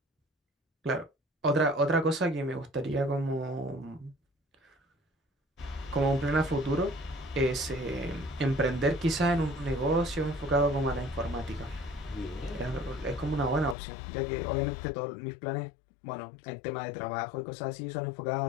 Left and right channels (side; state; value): right; drops out; at 13.8 s